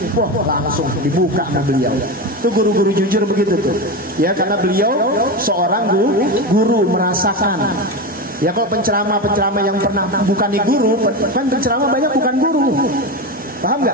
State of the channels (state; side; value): normal; both; correlation 0.19